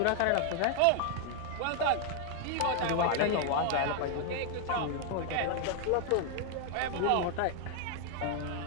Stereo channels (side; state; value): both; different; correlation 0.00